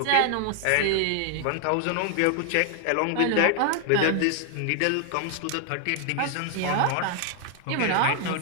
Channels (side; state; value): both; different; correlation 0.00